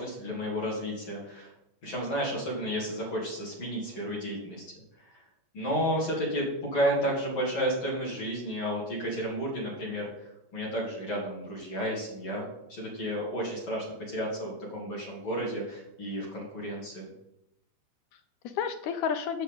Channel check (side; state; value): right; late; 11 ms